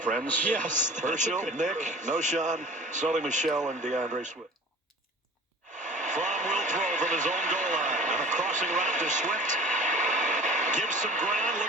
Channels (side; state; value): both; normal; correlation 0.42